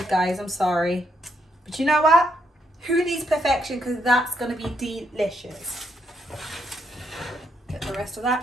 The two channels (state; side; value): normal; both; correlation 0.76